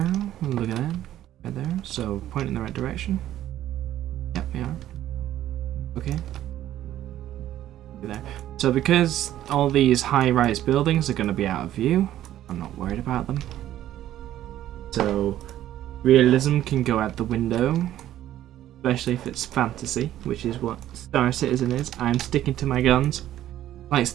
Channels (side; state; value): left; quieter; 12.7 dB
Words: Look at that. Right there. So point in the right direction. Yep, we are. Okay. There. So because all these high-rise buildings are going to be out of view, I'm not worried about them. So realism can go out the window. Especially if it's fantasy, which is what Star Citizen is. I'm sticking to my guns. Like